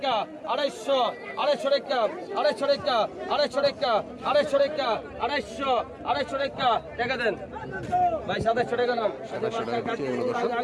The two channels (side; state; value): both; identical; correlation 1.00